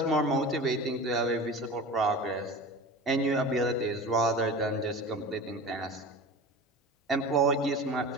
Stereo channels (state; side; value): normal; both; correlation 0.35